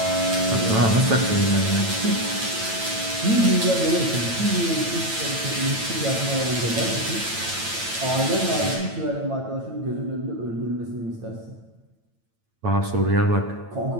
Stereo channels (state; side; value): late; left; 9.0 ms